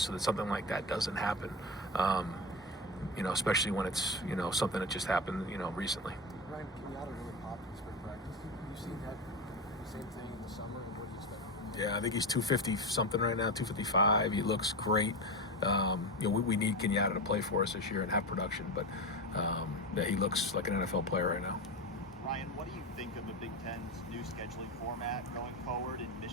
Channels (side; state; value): both; normal; correlation 0.21